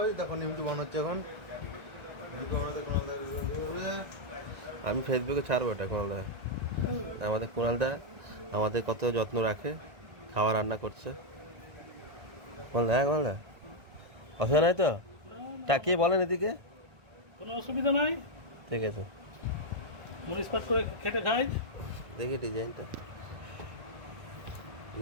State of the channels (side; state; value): left; late; 1.7 ms